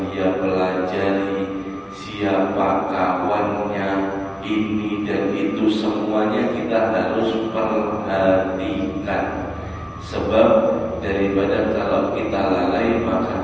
dia pelajari, siapa kawannya, ini dan itu semuanya kita harus perhatikan. Sebab daripada kalau kita lalai,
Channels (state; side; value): identical; both; correlation 1.00